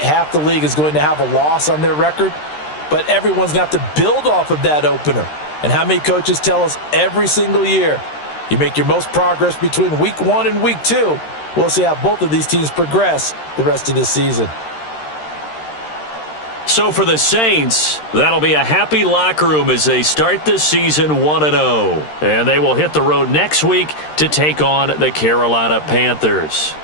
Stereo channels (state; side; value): late; right; 13 ms